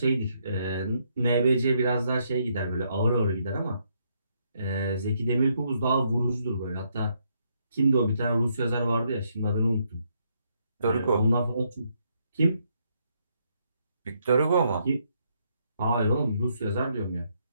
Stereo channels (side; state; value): both; inverted; correlation -0.74